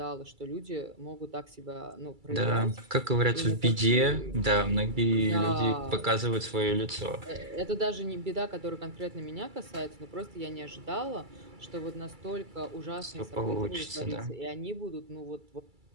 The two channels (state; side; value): late; left; 2.3 ms